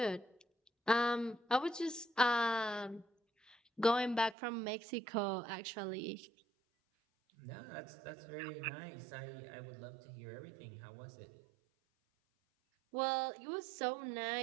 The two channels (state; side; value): drops out; left; at 4.4 s